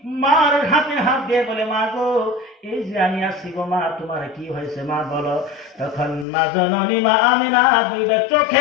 মার হাতে হাত দিয়ে বলে, মা গো এই যে আমি আসছি গো মা, তোমার কি হয়েছে মা বলো। তখন মা জননী মা আমিনা দুইটা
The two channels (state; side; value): drops out; right; at 6.2 s